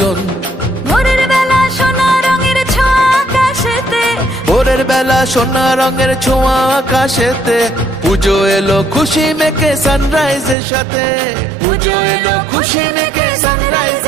ভোরের বেলা সোনা রঙের ছোঁয়া আকাশেতে, ভোরের বেলা সোনা রঙের ছোঁয়া আকাশেতে, পুজো এলো খুশি মেখে সানরাইজের সাথে, পুজো এলো খুশি মেখে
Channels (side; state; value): left; drops out; at 10.6 s